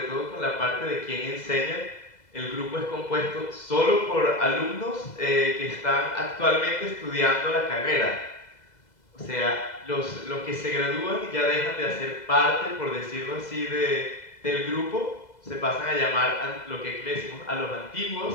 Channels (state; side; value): late; right; 2.0 ms